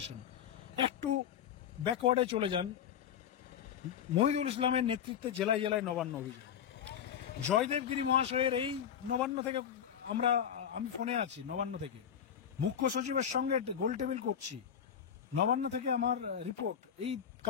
একটু ব্যাকওয়ার্ডে চলে যান, মহিদুল ইসলামের নেতৃত্বে জেলায় জেলায় নবান্ন অভিযান, জয়দেব গিরি মহাশয়ের এই নবান্ন থেকে আমি ফোনে আছি, নবান্ন থেকে মুখ্য সচিবের সঙ্গে গোল টেবিল করছি, নবান্ন থেকে আমার রিপোর্ট, এই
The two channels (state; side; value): quieter; right; 8.6 dB